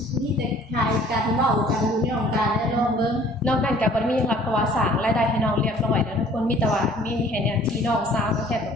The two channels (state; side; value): normal; both; correlation 0.53